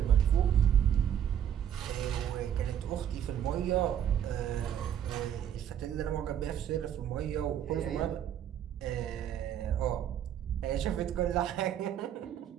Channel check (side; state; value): left; quieter; 9.6 dB